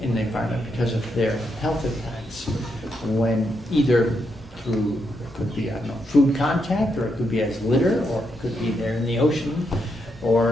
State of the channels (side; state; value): both; normal; correlation 0.81